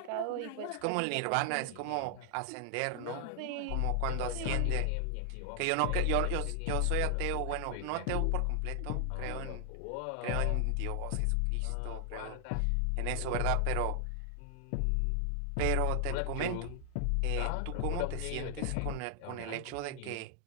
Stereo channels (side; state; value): both; different; correlation 0.00